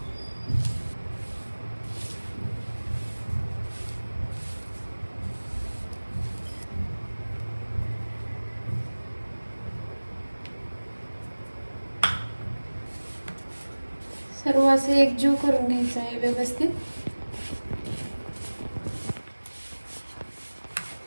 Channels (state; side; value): inverted; both; correlation -1.00